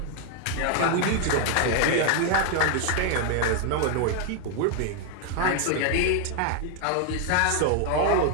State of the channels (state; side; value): different; both; correlation 0.00